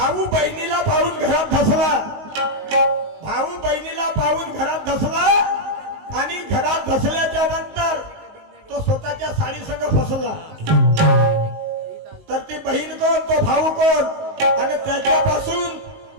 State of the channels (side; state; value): left; late; 19 ms